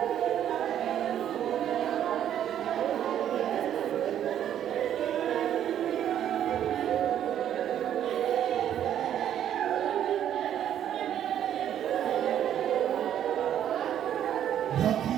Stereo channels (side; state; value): left; quieter; 10.4 dB